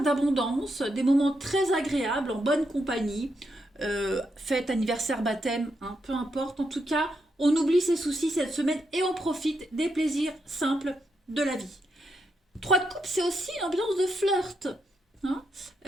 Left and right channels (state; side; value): normal; both; correlation 0.82